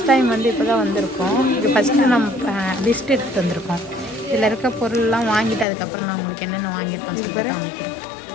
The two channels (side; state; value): right; drops out; at 5.7 s